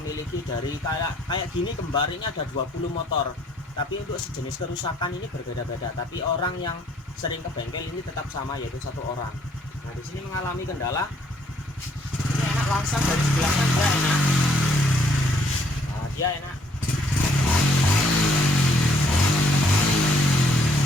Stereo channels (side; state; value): both; normal; correlation 0.66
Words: dari kayak gini kembar ini ada 20 motor. Tapi untuk sejenis kerusakan ini berbeda-beda. Tapi orang yang sering ke bengkel ini tetap sama, yaitu satu orang. Nah, di sini mengalami kendala. Ini enak langsung dari sebelah kan dia enak. Nah, dia enak.